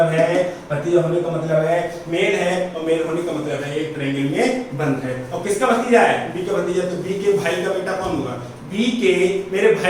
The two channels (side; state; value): both; identical; correlation 1.00